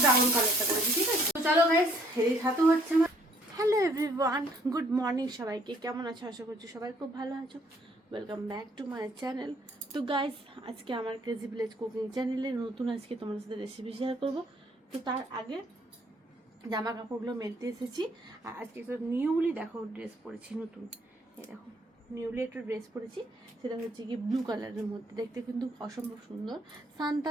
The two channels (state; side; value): normal; both; correlation 0.63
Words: ব্রাউন কালারটা করেছি, ঠিক আছে। তো চলো গাইস এই ছাতু হচ্ছে। হ্যালো এভরিওয়ান, গুড মর্নিং সবাইকে। কেমন আছো? আশা করছি সবাই খুব ভালো আছো। Welcome back to my channel. তো গাইস আজকে আমার ক্রেজি ভিলেজ কুকিং চ্যানেলে নতুন আজকে তোমাদের সাথে রেসিপি শেয়ার করবো। তো তার আগে জামা কাপড়গুলো মেলতে এসেছি। আর আজকে একটা নিউলি দেখো ড্রেস পরেছি, নতুন এই দেখো নিউলি একটা ড্রেস পরেছি, সেটা হচ্ছে কি ব্লু কালারের মধ্যে, দেখতে কিন্তু অসম্ভব সুন্দর। স্নান